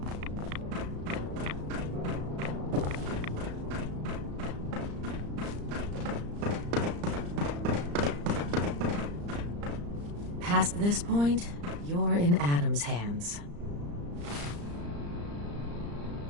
Past this point, you're in Adam's hands.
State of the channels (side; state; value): left; late; 34 ms